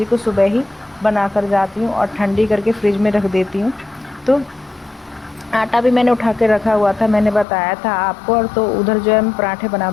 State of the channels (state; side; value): drops out; right; at 7.5 s